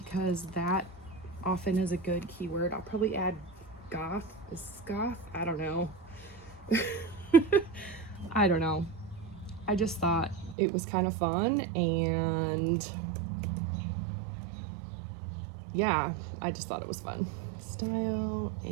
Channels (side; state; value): left; drops out; at 10.6 s